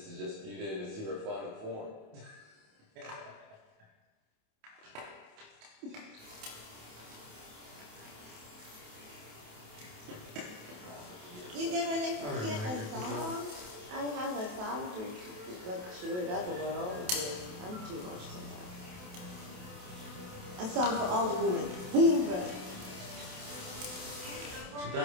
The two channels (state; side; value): late; left; 28 ms